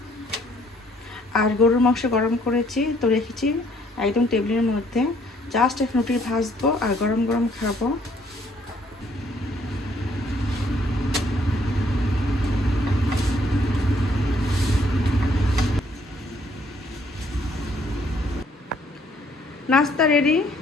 আর গরুর মাংস গরম করেছি, তো রেখেছি একদম টেবিলের মধ্যে। জাস্ট এখন রুটি ভাজবো আর গরম গরম খাবো। নাস্তা রেডি।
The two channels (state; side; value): normal; both; correlation 0.65